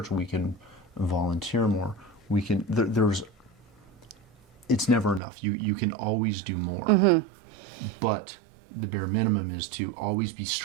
We can volunteer more. We can. It's never enough. You can always do more. But the bare minimum is to always be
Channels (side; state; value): left; drops out; at 5.2 s